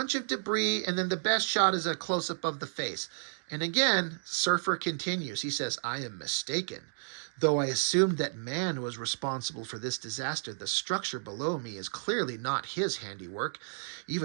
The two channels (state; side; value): silent; left; digital silence